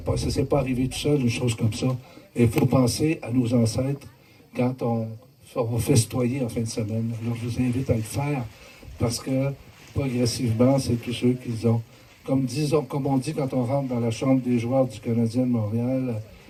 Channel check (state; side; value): identical; both; correlation 1.00